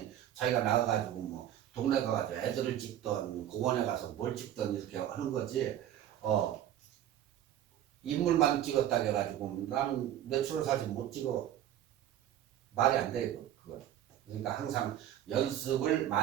자기가 나가 가지고 뭐 동네 가 가지고 애들을 찍던 공원에 가서 뭘 찍던 이렇게 하는 거지. 인물만 찍었다 해가지고 나는 내추럴 사진 못 찍어, 말이 안 돼요. 그거. 그러니까 항상 연습을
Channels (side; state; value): left; quieter; 11.6 dB